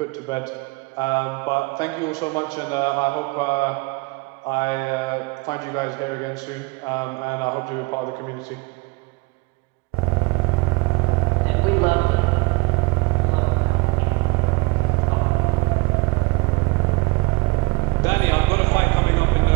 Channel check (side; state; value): left; quieter; 24.2 dB